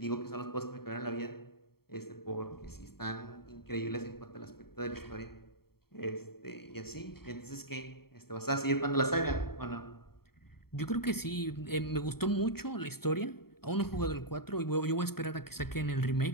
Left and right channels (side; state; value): right; late; 0.95 ms